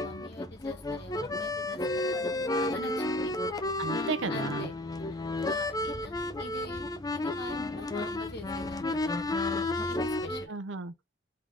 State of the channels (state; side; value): normal; both; correlation 0.46